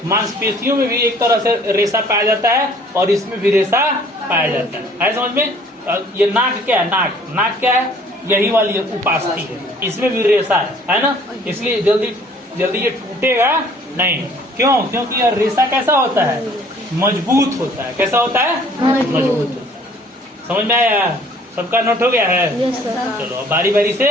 मांसपेशियों में भी एक तरह से रेशा पाया जाता है और इसमें भी रेशा पाया जाता है। समझ में? ये नाक क्या है? नाक क्या है? यही वाली उपास्थि है, इसमें भी रेशा है ना। इसलिए जल्दी ये टूटेगा नहीं। क्यों? क्योंकि यह रेशा कैसा होता है? मजबूत होता है। कैसा होता है? मजबूत होता है। समझ में आया? सबका नोट हो गया है? चलो अब बारी बारी से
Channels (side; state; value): both; normal; correlation 0.56